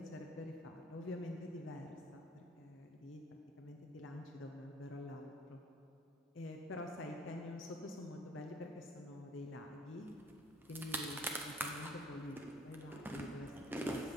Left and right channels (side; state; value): both; normal; correlation 0.55